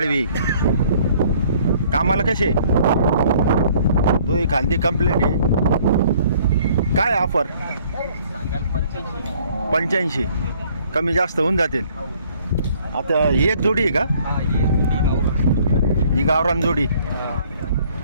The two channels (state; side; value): inverted; both; correlation -0.59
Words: कामाला कसे? दोही खांदी कंप्लीट आहे. काय ऑफर? 85. कमी जास्त होऊन जातील. आता ही एक जोडी आहे का? ही गावरान जोडी.